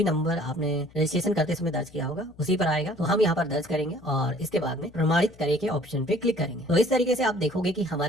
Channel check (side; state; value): left; noise; hum, 25 dB below the sound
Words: नंबर आपने रजिस्ट्रेशन करते समय दर्ज किया होगा उसी पर आएगा। तो हम यहाँ पर दर्ज करेंगे और इसके बाद में प्रमाणित करे के ऑप्शन पे क्लिक करेंगे। तो इस तरीके से आप देखोगे कि